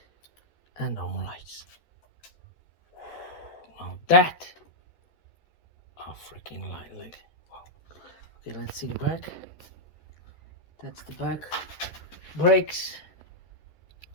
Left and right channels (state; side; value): late; right; 12 ms